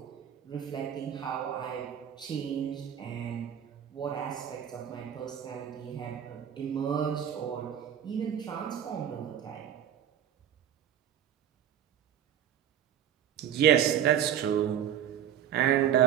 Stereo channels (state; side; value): quieter; left; 9.7 dB